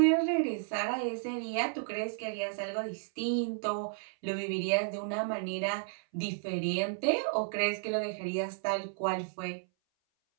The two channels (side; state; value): left; silent; 56 dB below the other